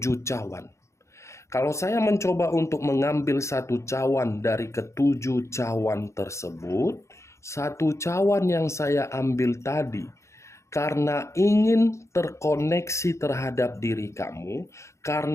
cawan. Kalau saya mencoba untuk mengambil satu cawan dari ketujuh cawan tersebut, satu cawan yang saya ambil tadi, karena ingin terkoneksi terhadap diri kamu,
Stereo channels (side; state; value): right; late; 0.14 ms